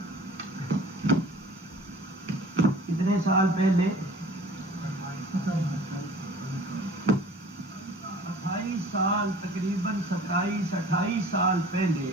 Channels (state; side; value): normal; both; correlation 0.47